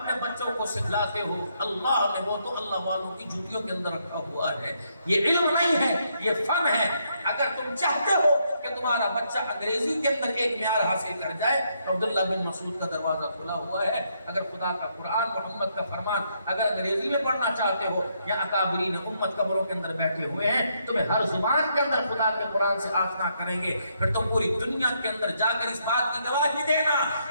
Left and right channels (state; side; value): inverted; both; correlation -0.75